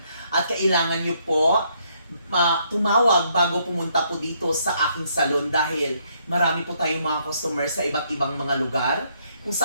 At kailangan nyo po tumawag bago pumunta po dito sa aking salon dahil marami po tayong mga customer sa iba't ibang mga lugar kung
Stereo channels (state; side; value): inverted; both; correlation -0.71